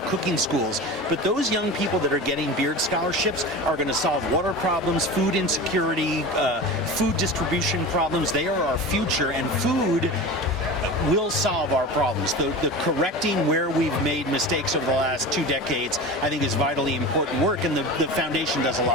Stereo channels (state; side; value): normal; both; correlation 0.31